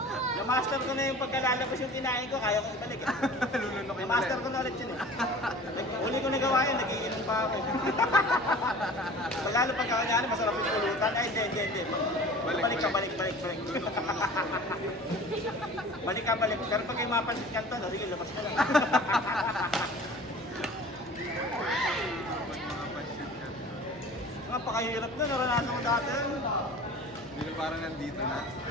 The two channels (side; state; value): both; normal; correlation 0.42